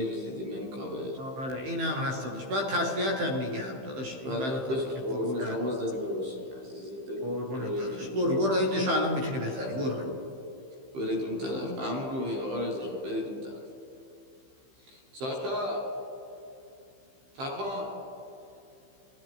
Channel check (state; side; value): late; left; 15 ms